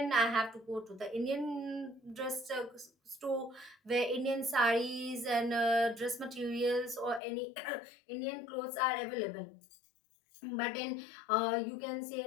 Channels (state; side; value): drops out; right; at 7.2 s